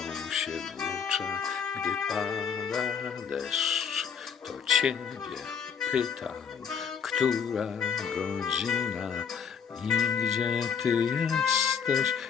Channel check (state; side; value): quieter; right; 6.9 dB